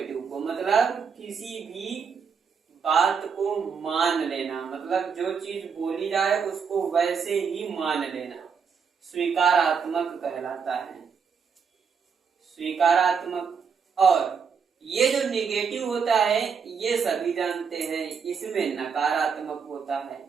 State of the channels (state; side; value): quieter; left; 6.2 dB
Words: को मतलब किसी भी बात को मान लेना, मतलब जो चीज बोली जाए उसको वैसे ही मान लेना स्वीकारात्मक कहलाता है, स्वीकारात्मक। और ये जो निगेटिव होता है ये सभी जानते हैं, इसमें नकारात्मक होता है।